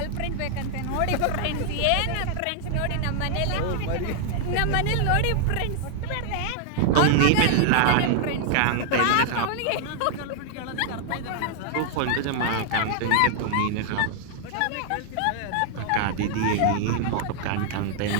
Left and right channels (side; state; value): both; different; correlation 0.00